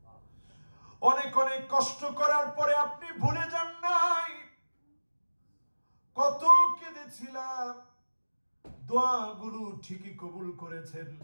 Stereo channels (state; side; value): inverted; both; correlation -1.00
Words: অনেক অনেক কষ্ট করার পরে আপনি ভুলে যান নাই। কত কেঁদেছিলাম, দোয়াগুলো ঠিকই কবুল করেছেন।